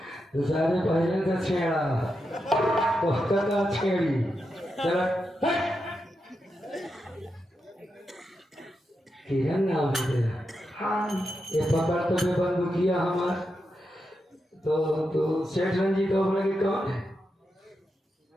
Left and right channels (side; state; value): both; normal; correlation 0.87